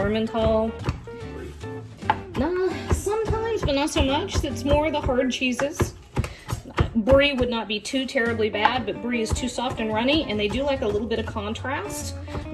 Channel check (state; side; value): identical; both; correlation 1.00